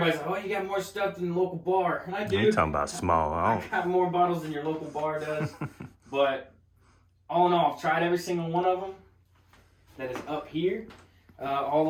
like, oh, you got more stuff than the local bar. And I do. You talking about small. I got more bottles than your local bar does. But all in all, I've tried every single one of them that is up here. All the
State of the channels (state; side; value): identical; both; correlation 1.00